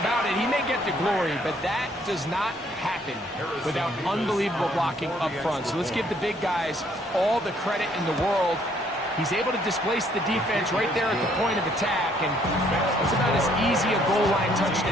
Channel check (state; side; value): normal; both; correlation 0.65